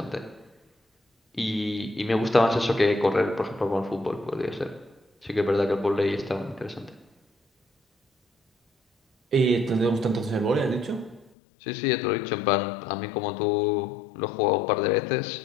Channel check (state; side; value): drops out; right; at 11.2 s